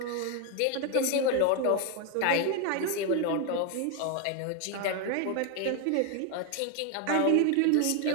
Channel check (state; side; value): different; both; correlation 0.01